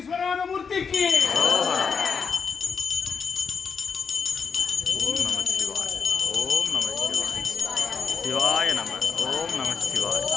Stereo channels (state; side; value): quieter; right; 5.9 dB